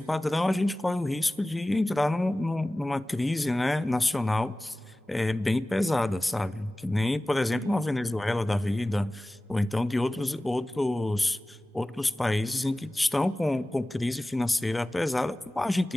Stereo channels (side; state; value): both; normal; correlation 0.97